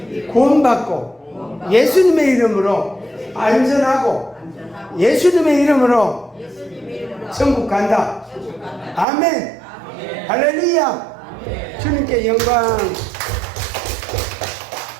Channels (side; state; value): left; drops out; at 9.1 s